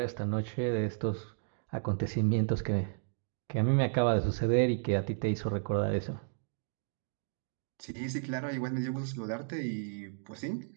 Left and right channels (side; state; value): left; silent; digital silence